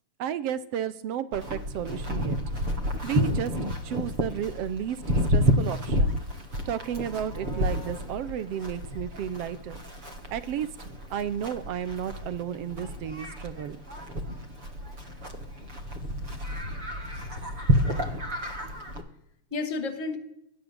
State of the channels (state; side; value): late; left; 6.9 ms